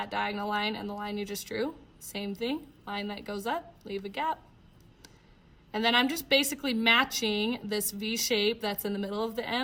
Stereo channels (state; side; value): identical; both; correlation 1.00